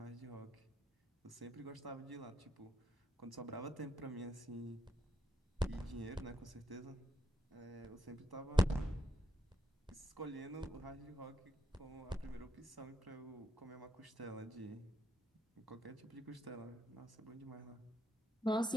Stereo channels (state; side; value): normal; both; correlation 0.79